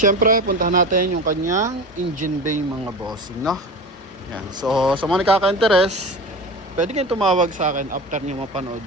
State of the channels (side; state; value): both; normal; correlation 0.31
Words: puntahan natin yung kanyang engine bay mga bossing, no? Yan. So sa mga nakaka-interest, pwede kayong tumawag sa akin after niyo mapanood